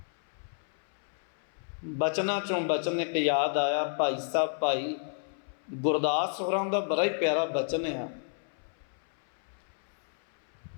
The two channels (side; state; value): right; silent; 57 dB below the other